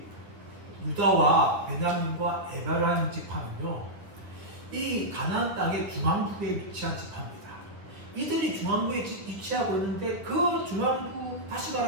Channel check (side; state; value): left; late; 9.9 ms